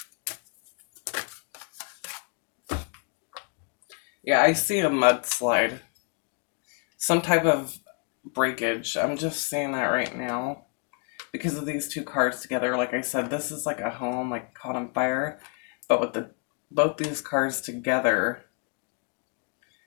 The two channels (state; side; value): quieter; right; 38.7 dB